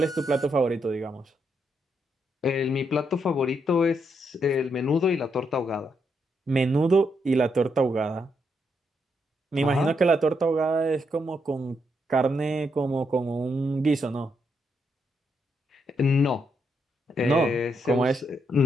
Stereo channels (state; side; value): normal; both; correlation 0.79